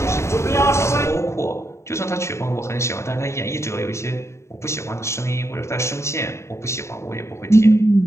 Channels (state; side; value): late; right; 0.13 ms